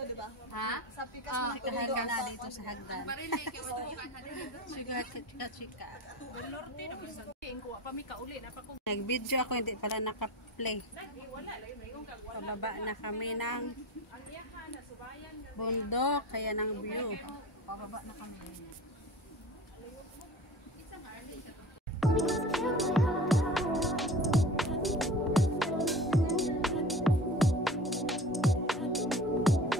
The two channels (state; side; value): normal; both; correlation 0.36